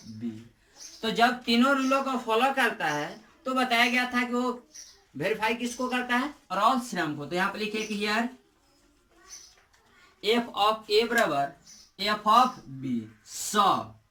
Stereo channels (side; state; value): both; identical; correlation 1.00